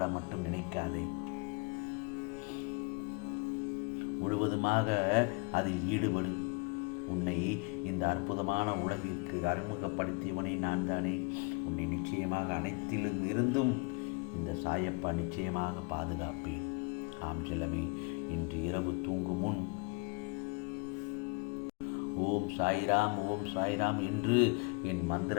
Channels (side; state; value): right; quieter; 30.5 dB